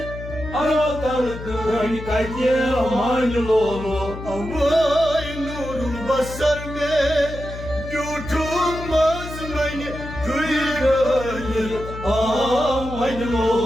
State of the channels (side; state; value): left; noise; hum, 10 dB below the sound